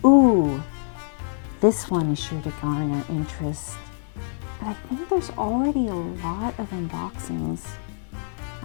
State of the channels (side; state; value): right; silent; 62 dB below the other